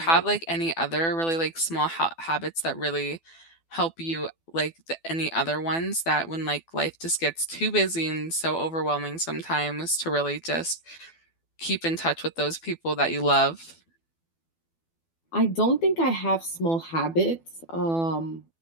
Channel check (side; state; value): right; late; 12 ms